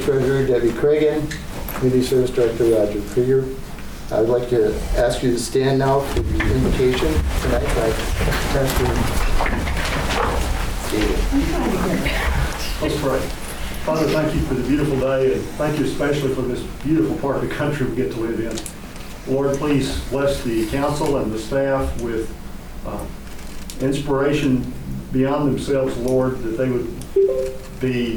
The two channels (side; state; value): both; identical; correlation 1.00